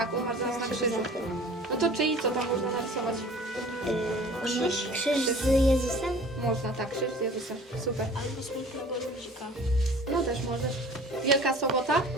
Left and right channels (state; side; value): normal; both; correlation 0.46